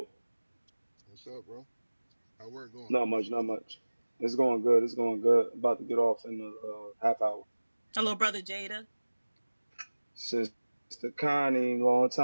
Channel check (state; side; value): inverted; both; correlation -1.00